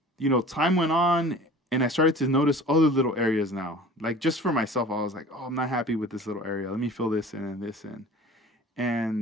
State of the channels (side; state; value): both; normal; correlation 0.43